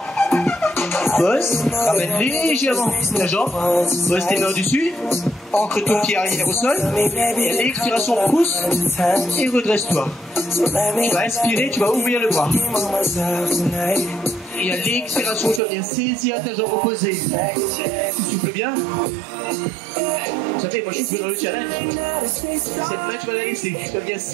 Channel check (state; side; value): drops out; left; at 15.6 s